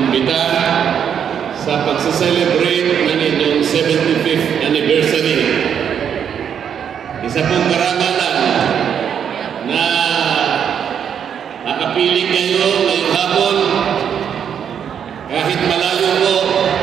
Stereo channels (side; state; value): left; quieter; 8.2 dB